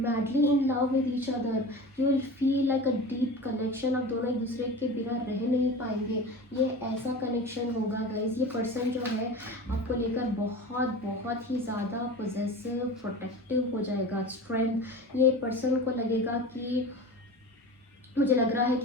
in love with each other. You will feel like a deep connection. आप दोनों एक दूसरे के बिना रह नहीं पाएंगे. ये ऐसा कनेक्शन होगा गाइज. ये पर्सन जो है आपको लेकर बहुत बहुत ही ज़्यादा पोजेसिव, प्रोटेक्टिव हो जाएगा. स्ट्रेंथ, ये पर्सन को लगेगा कि, मुझे लग रहा है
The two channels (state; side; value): normal; both; correlation 0.33